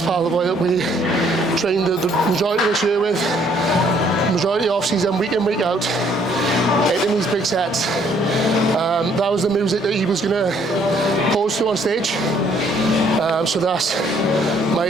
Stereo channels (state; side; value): normal; both; correlation 0.64